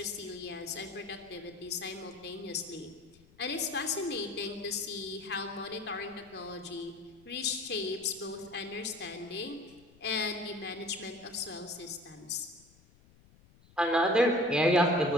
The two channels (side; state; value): left; noise; rumble, 27 dB below the sound